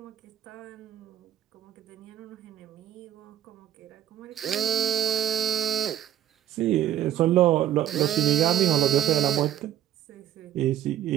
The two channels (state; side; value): quieter; left; 11.7 dB